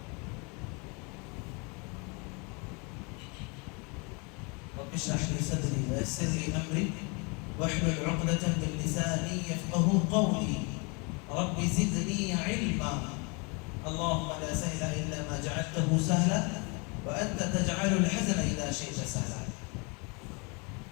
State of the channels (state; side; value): quieter; right; 31.3 dB